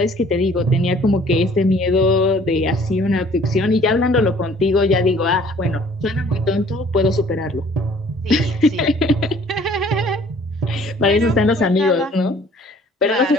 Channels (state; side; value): normal; both; correlation 0.55